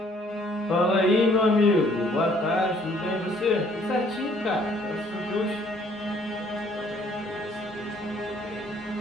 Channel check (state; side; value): normal; both; correlation 0.62